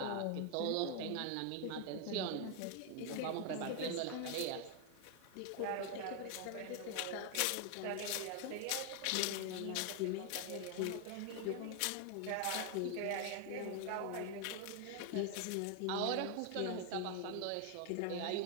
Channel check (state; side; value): different; both; correlation 0.01